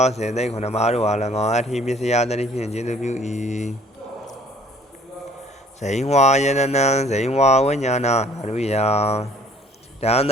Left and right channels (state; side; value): normal; both; correlation 0.56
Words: ာစေသိက်9ပါးတို့အား၎င်းအထိပစ္စယတတိဖြင့်ကျေစုပြု၏ဇိဝါယရဏံဇိဝါဝိညာဏဓာတုယံဒန္တ